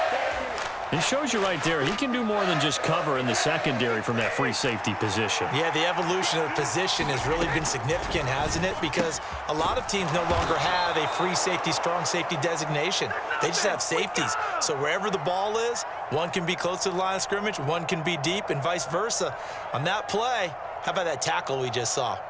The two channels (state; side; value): identical; both; correlation 1.00